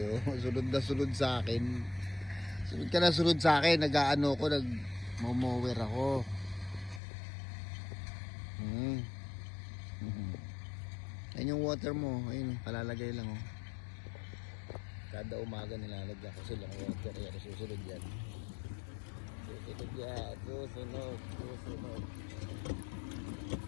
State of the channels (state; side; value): drops out; right; at 7.0 s